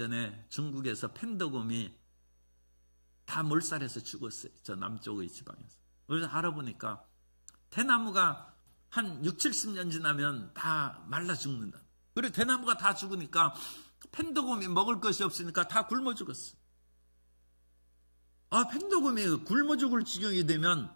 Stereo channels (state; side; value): inverted; both; correlation -1.00